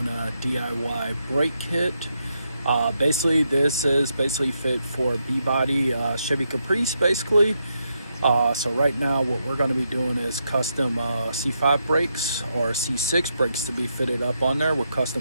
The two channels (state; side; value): inverted; both; correlation -0.81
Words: a DIY brake kit. Basically this is fit for B-body Chevy Caprice basically. So right now what we're going to be doing is custom C5 brakes or C6 brakes to be fitted up on there with